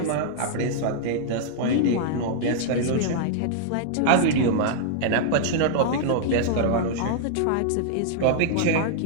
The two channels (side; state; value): both; different; correlation -0.01